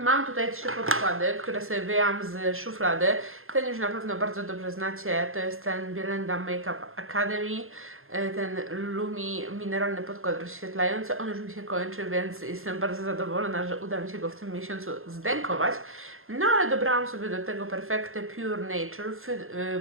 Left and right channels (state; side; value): late; left; 0.61 ms